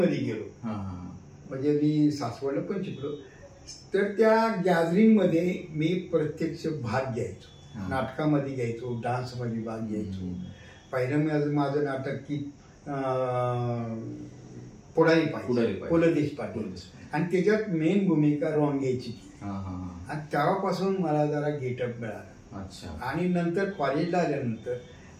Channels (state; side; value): identical; both; correlation 1.00